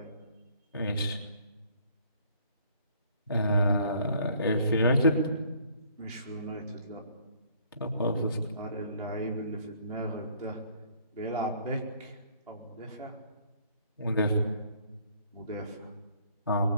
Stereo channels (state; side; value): inverted; both; correlation -0.60